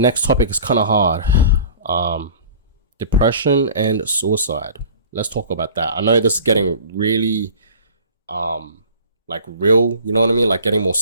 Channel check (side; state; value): both; inverted; correlation -0.43